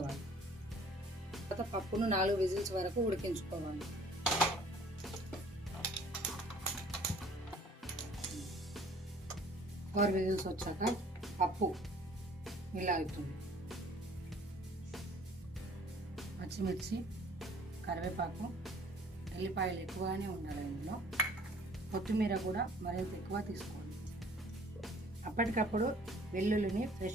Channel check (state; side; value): normal; both; correlation 0.54